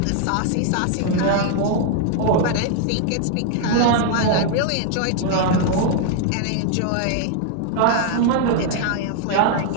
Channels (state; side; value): different; both; correlation 0.00